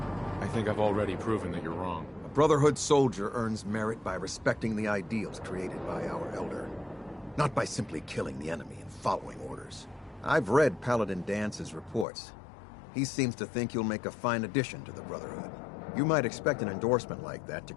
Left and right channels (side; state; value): right; drops out; at 12.1 s